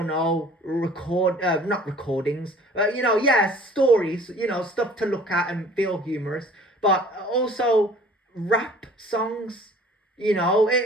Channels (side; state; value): both; normal; correlation 0.50